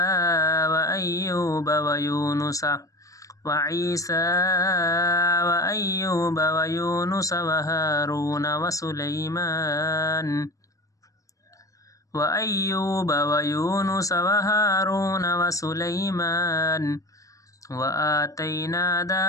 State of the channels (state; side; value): late; right; 0.16 ms